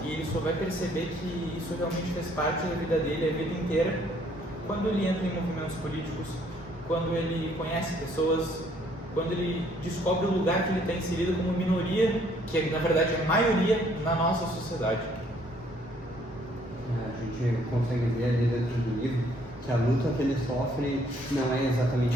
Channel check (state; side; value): normal; both; correlation 0.64